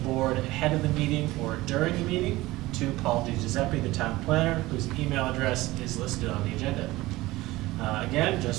ahead of the meeting or during the meeting to Paul DiGiuseppe, the town planner, whose email address is listed on the agenda. Again,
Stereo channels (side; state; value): left; quieter; 18.8 dB